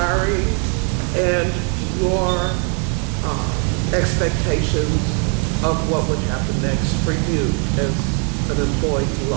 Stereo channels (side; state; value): left; quieter; 39.6 dB